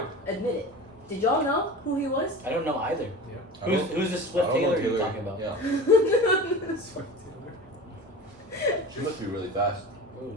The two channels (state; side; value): normal; both; correlation 0.33